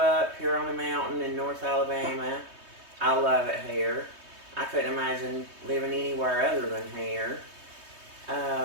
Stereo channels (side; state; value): left; late; 3.2 ms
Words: here on the mountain in North Alabama. I love it here. I couldn't imagine living anywhere other than here.